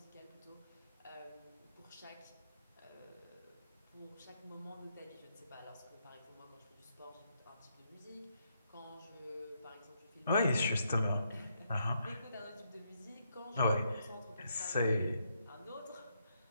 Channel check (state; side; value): inverted; both; correlation -0.77